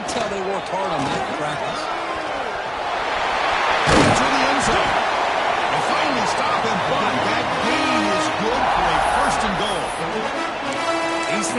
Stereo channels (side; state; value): both; identical; correlation 1.00